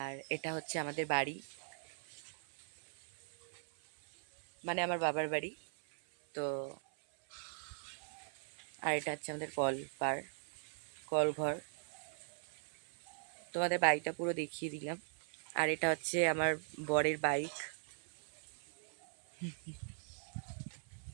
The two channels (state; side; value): silent; left; 51 dB below the other